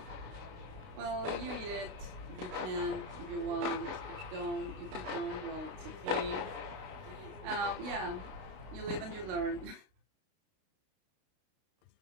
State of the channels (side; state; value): left; late; 32 ms